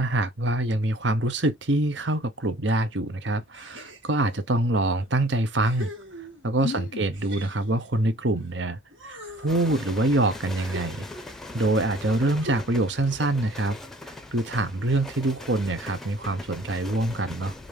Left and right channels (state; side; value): normal; both; correlation 0.53